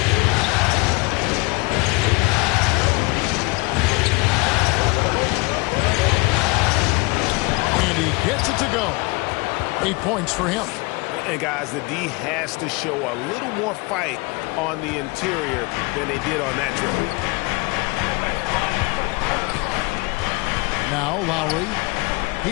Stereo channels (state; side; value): quieter; right; 26.0 dB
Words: And he gets it to go. 8 points for him. And guys, the D has to show a little more fight on the interior than they did on that dribble. Now Lowry.